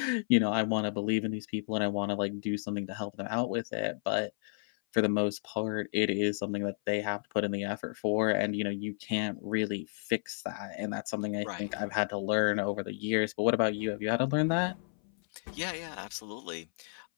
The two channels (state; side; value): silent; right; 56 dB below the other